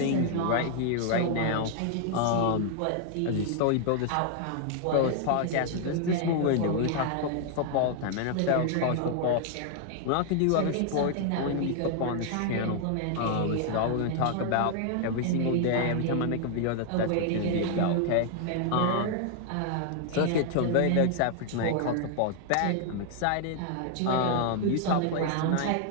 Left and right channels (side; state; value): both; different; correlation 0.00